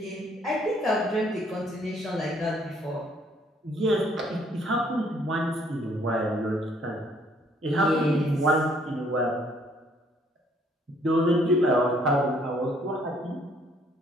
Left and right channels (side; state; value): both; normal; correlation 0.64